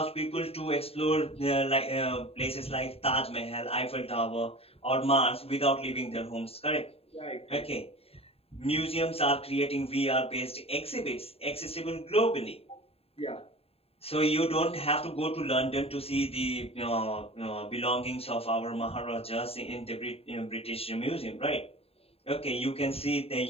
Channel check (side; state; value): right; late; 0.29 ms